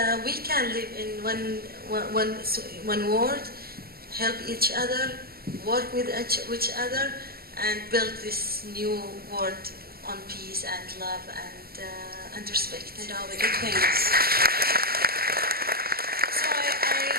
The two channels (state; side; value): late; left; 0.44 ms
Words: we can live in one world, help each other, work with each other, and build this new world on peace and love and respect and all the good things. So